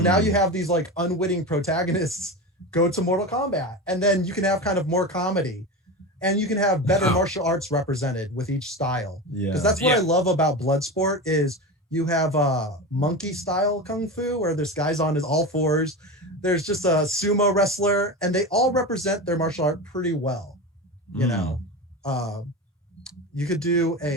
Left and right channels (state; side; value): normal; both; correlation 0.24